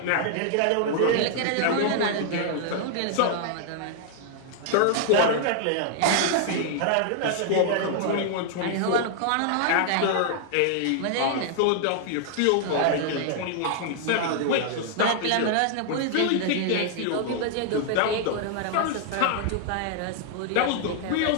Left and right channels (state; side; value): different; both; correlation 0.00